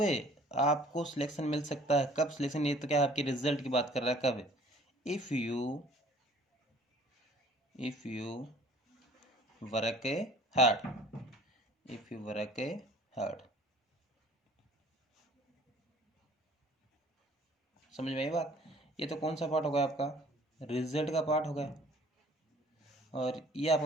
आपको सिलेक्शन मिल सकता है, कब सिलेक्शन, ये तो क्या आपके रिजल्ट की बात कर रहा है, कब, if you work hard, if you work hard. समझ में आई बात। ये तो कौन सा पार्ट हो गया आपका, रिजल्ट का पार्ट हो गया, और ये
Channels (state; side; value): normal; both; correlation 0.53